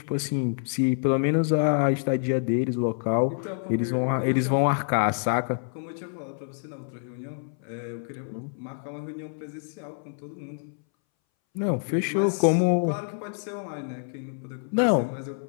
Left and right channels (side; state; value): right; silent; 60 dB below the other